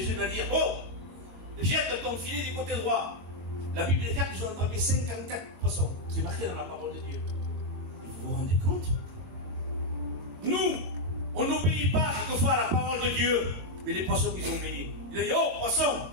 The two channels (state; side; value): late; left; 21 ms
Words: va dire, oh, jette ton filet du côté droit. La Bible déclare qu'ils ont attrapé 54 poissons. C'est marqué dans la parole de Dieu. Vous vous rendez compte? Nous, on n'obéit pas quelquefois à la parole de Dieu, mais les poissons qu'ils ont obéi. Il a dit, oh, poisson,